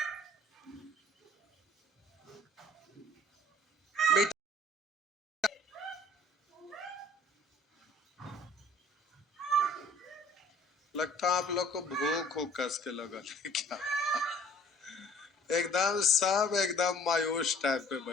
लगता है आप लोग को भूख हो कस के लगल है क्या? एकदम सब एकदम मायूस टाइप पे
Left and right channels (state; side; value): normal; both; correlation 0.53